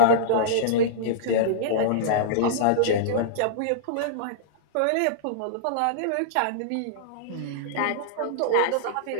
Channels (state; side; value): different; both; correlation -0.03